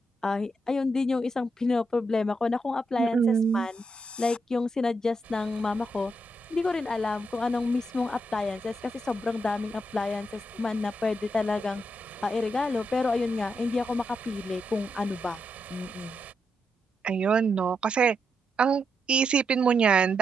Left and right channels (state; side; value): normal; both; correlation 0.82